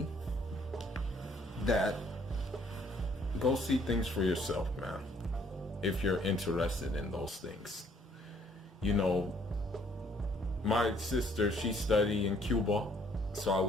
that go see things for yourself, man, if you're interested in those things. You know, my sister, she studied in Cuba, so I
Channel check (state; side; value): normal; both; correlation 0.63